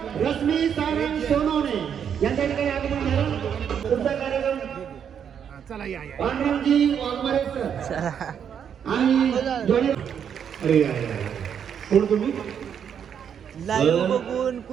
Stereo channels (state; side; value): quieter; left; 8.1 dB